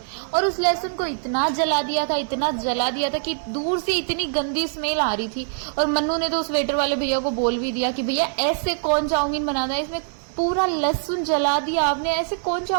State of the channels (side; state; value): left; silent; digital silence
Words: और उस लहसुन को इतना जला दिया था, इतना जला दिया था कि दूर से इतनी गंदी स्मेल आ रही थी। और मन्नू ने तो उस वेटर वाले भैया को बोल भी दिया कि भैया ऐसे कौन चाउमीन बनाता है, इसमें पूरा लहसुन जला दिया आपने, ऐसे कौन